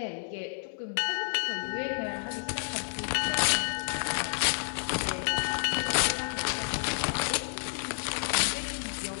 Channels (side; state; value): right; silent; 58 dB below the other